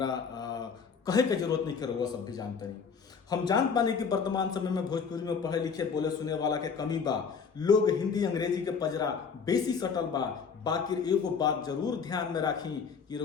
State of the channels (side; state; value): right; quieter; 5.9 dB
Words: कहे के जरूरत नहीं है, रउआ सब भी जानते नहीं। हम जान पाने कि वर्तमान समय में भोजपुरी में पढ़े लिखे बोले सुने वाला के कमी बा। लोग हिंदी अंग्रेजी के पजरा बेसी सटल बा। बाकी एगो बात जरूर ध्यान में राखी कि